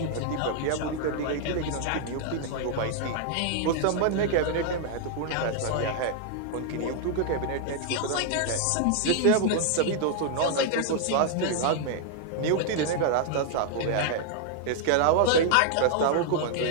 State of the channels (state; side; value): different; both; correlation 0.00